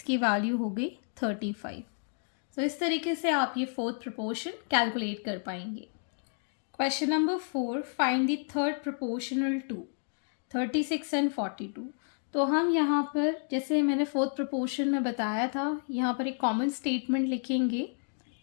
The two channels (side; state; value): right; silent; 57 dB below the other